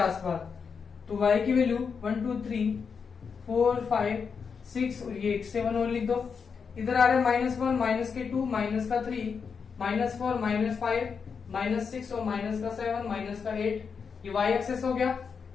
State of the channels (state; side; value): quieter; right; 5.9 dB